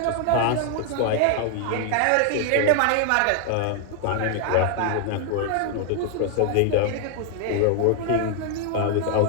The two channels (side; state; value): both; different; correlation 0.00